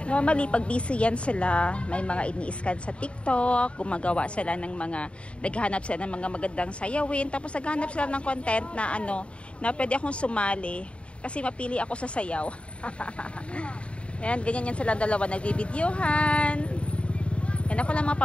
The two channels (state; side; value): late; right; 0.059 ms